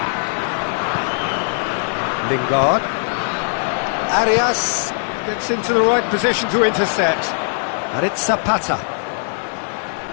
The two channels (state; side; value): silent; right; 66 dB below the other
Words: Lingard. Arias gets into the right position to intercept. And it's Zapata.